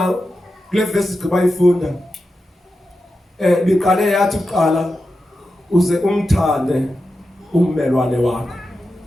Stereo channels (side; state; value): both; normal; correlation 0.90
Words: kule verse sibayifunda biqale yathi uqala uze umthande ummelwane wakho.